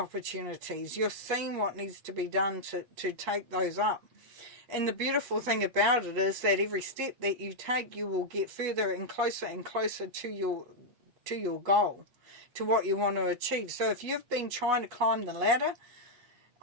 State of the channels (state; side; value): late; left; 8.3 ms